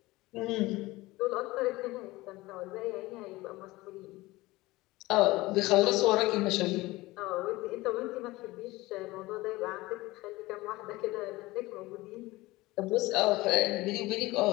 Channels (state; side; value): quieter; right; 19.9 dB